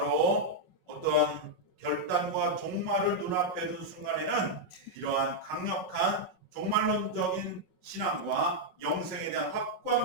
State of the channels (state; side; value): late; right; 5.4 ms